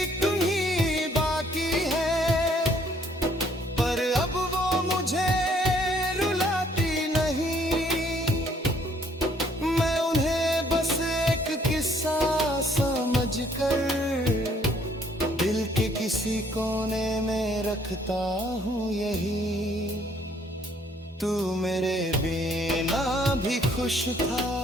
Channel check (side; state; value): both; normal; correlation 0.64